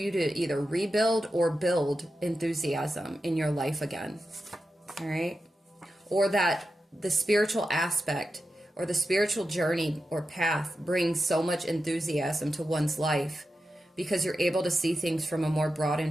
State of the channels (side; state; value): both; normal; correlation 0.90